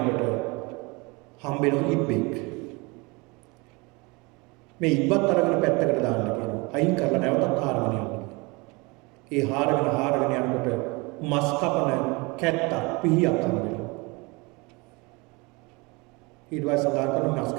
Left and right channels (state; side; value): quieter; left; 26.6 dB